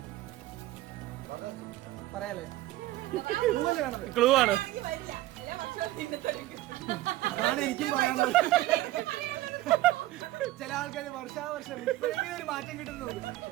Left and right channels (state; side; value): quieter; left; 16.5 dB